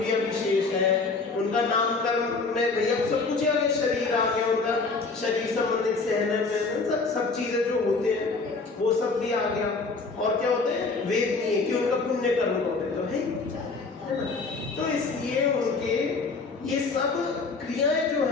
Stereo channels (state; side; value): quieter; right; 4.1 dB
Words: अभी शेष है, उनका नामकरण में भैया सब कुछ आ गया, शरीर आ गया, उनका शरीर संबंधित सहन में सब चीजें जो होते हैं वो सब भी आ गया। और क्या होते हैं? वेदनीय कि उनका पुण्य कर्म होते तो है ना। तो इसलिए उनके ये सब क्रियाएं जो